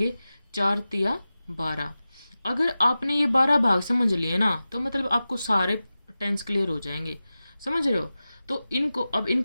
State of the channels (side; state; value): both; inverted; correlation -0.94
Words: 4 तिया 12। अगर आपने ये 12 भाग समझ लिए ना, तो मतलब आपको सारे टेंस क्लियर हो जाएंगे। समझ रहे हो? तो